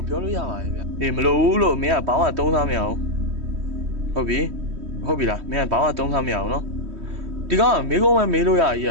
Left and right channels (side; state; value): left; late; 3.1 ms